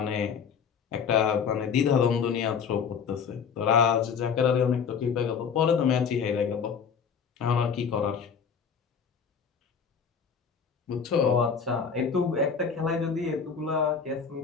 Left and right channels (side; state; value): right; quieter; 6.5 dB